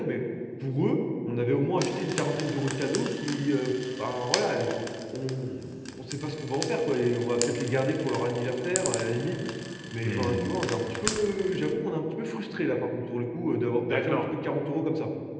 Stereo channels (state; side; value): identical; both; correlation 1.00